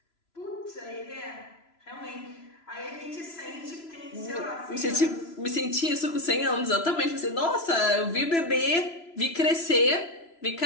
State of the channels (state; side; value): late; right; 3.0 ms